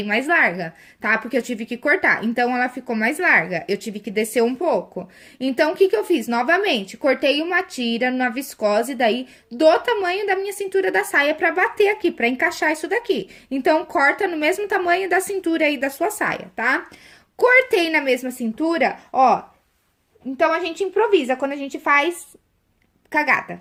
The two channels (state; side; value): identical; both; correlation 1.00